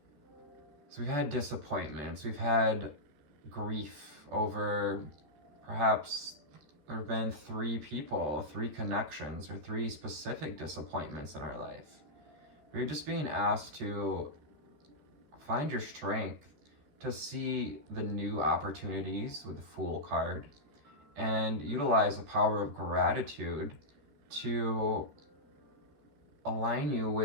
So we've had disappointments, we've had grief over perhaps there have been 3 people, 3 connections, or 3 specific disappointments in our life. We're just being asked to find your strength to see the new opportunities with the Fool card and utilize the power of gratitude to align you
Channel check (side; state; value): left; late; 14 ms